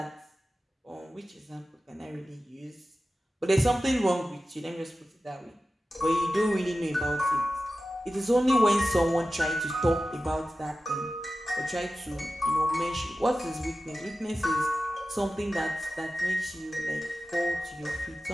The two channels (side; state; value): both; normal; correlation 0.94